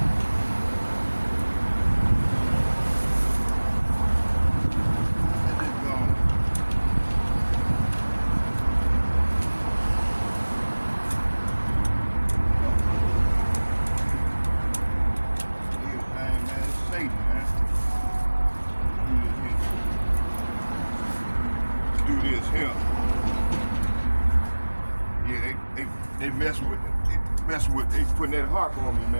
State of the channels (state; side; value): inverted; both; correlation -1.00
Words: Let this go. Everything, man, it's Satan, man. Do this here. Yeah, they messing with it. They putting that harp on me,